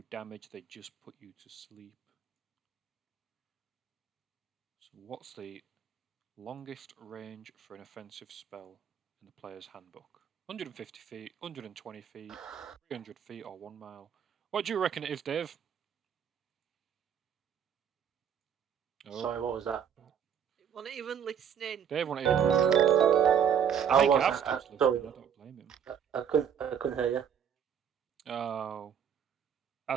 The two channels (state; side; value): quieter; left; 8.2 dB